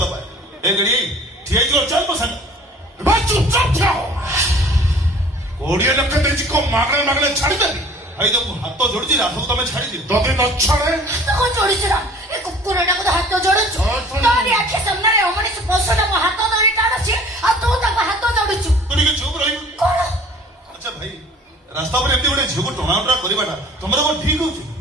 ପାଏ। ଏ ଗଡି ଠିଆ ହେଇଯିବ ଚାଲ ମୋ ସାଙ୍ଗ। ଭାଇ ଚୁପଚାପ ଥାଅ 20 ଲକ୍ଷ ଦେଇଛି କଣ ମାଗଣା ମାଗଣା ଛାଡ଼ିଦେବି ଭାଇ ତ ମୁଁ ହାତ ଯୋଡୁଛି ରାଧକୁ ତମେ ଛାଡିଦିଅ। ଯଦି ନ ଛାଡ଼େ ତାକୁ ଯୋଡ଼ିଛୁ ନା ଏ କୁକୁରଟାକୁ ତ ହାତ ଯୋଡୁଛୁ ତୋରି ଆଖି ସାମ୍ନାରେ ଅମଣିଷ ପଶୁଟା ମୋ ହାତ ଧରି ଟାଣୁଛି ଆଉ ତୁ ତାକୁ ହାତ ଯୋଡୁଛୁ ତୁ ଟିକେ ଚୁପ ରହିବୁ। କଣ ଆଚ୍ଛା ଭାଇ ରାସ୍ତା ଉପରେ ଏମିତି ଗୋଟେ ଝିଅକୁ ଟଣାଉଟରା କରିବାଟା ତମର କଣ ଠିକ ହଉଛି?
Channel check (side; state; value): both; normal; correlation 0.49